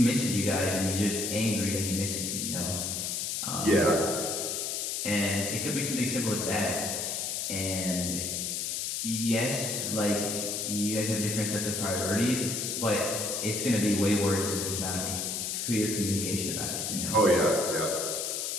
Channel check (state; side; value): noise; left; hiss, 2 dB below the sound